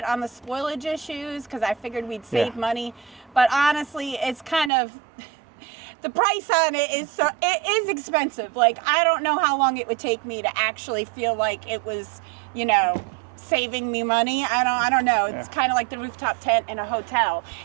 on the spoilage issues because I figured we'd save money. But honestly, it's kind of the price on it is expensive. Like, I don't know how long it would take me to actually feel like it was, you know, saving me money. I don't know. It's kind of like the rooftop tent in a hotel.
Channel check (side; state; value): left; drops out; at 4.7 s